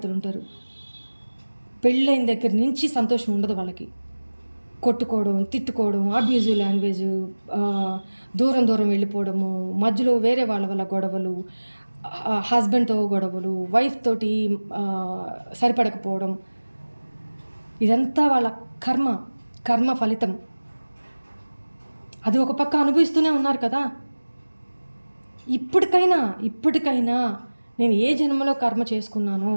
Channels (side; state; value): both; inverted; correlation -1.00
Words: ఉంటారు, పెళ్ళైన దగ్గర నుంచి సంతోషం ఉండదు వాళ్ళకి. కొట్టుకోవడం, తిట్టుకోవడం, అబ్యూజివ్ లాంగ్వేజ్, దూరం దూరం వెళ్ళిపోవడము, మధ్యలో వేరే వాళ్ళ వల్ల గొడవలు, హస్బెండ్తో గొడవలు, వైఫ్ తోటి సరిపడకపోవడం, ఇదంతా వాళ్ళ కర్మ ఫలితం. అది ఒక పక్క అనుభవిస్తూనే ఉన్నారు కదా. ఇప్పటికైనా నేను ఏ జన్మలో కర్మ చేసుకున్నానో